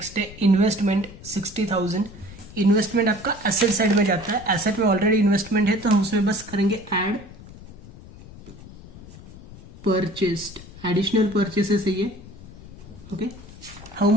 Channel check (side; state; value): left; noise; rumble, 17 dB below the sound